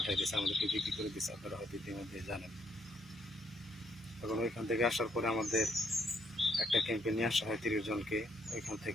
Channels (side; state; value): both; normal; correlation 0.70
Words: দিয়েছে, আমাদেরকে বিক্রি করে দিয়েছে। আপনারা হয়তো ইতিমধ্যে জানেন। এবং ওইখান থেকে আসার পরে আমাদের একটা ক্যাম্পে নিয়ে আসা হয় 30 জনকে। ওইখান